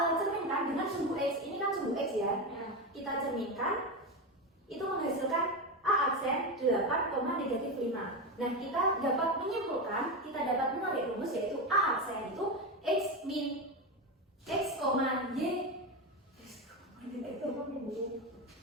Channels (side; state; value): both; normal; correlation 0.15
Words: cerminkan dengan sumbu X. Ini kan sumbu X ya. Kita cerminkan, itu menghasilkan A aksen 8,-5. Nah, kita dapat menyimpulkan, kita dapat menarik rumus yaitu A aksen itu X min X, Y.